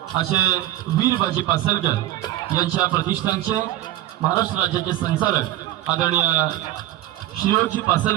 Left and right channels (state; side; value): quieter; left; 14.1 dB